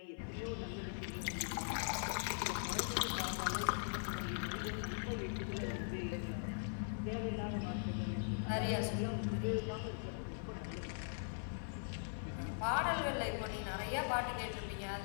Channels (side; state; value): right; silent; 50 dB below the other